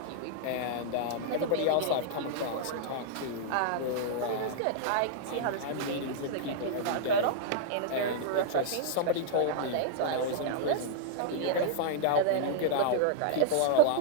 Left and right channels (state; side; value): different; both; correlation -0.01